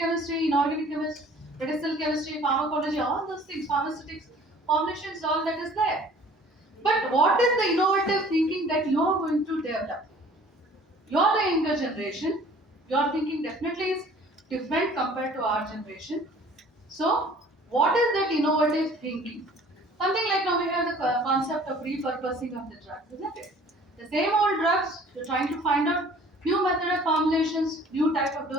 inorganic chemistry, medicinal chemistry, pharmacology, all those things, pharmaceutics, formulations, all that is there. But what is the innovative thinking that you are going to develop? You're the younger generation. Your thinking definitely is different compared to our generation. So, what is that innovative thinking? Something like now we have the concept of repurposing of the drugs, isn't it? The same old drugs, you're trying to find out new method of formulations, new type of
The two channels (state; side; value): normal; both; correlation 0.51